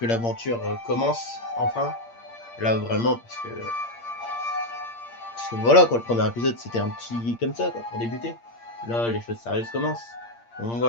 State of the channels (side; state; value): right; late; 8.6 ms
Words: l'aventure commence enfin. Là vraiment parce que voilà quoi, le premier épisode c'était un petit comme ça quoi, pour débuter. Là les choses sérieuses commencent. Donc